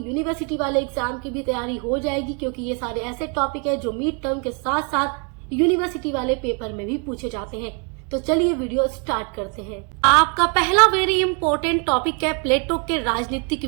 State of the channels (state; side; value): quieter; left; 36.3 dB